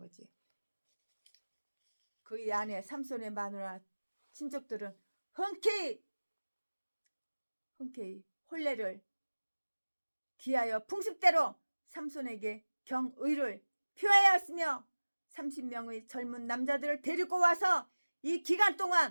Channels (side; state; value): both; inverted; correlation -1.00